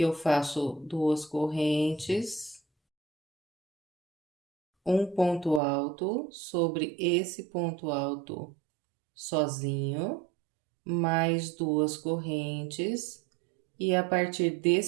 eu faço 2 correntes, um ponto alto sobre esse ponto alto sozinho, mais 2 correntes, e a partir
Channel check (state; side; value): drops out; left; at 5.6 s